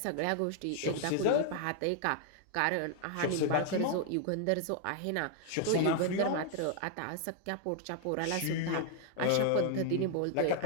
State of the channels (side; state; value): both; different; correlation 0.00